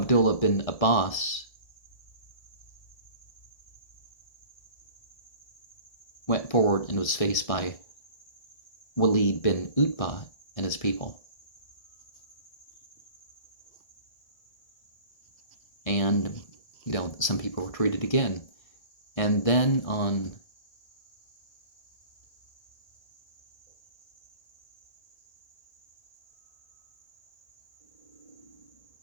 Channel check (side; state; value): right; late; 1.6 ms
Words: bin Abbas went forward and was faced by Walid bin Utbah and his people. And, some people retreated again. And then on